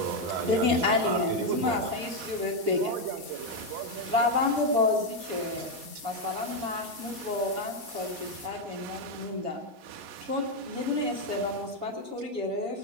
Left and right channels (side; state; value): left; late; 7.0 ms